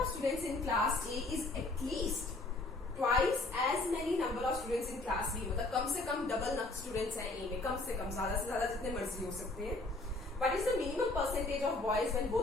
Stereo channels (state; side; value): quieter; right; 3.0 dB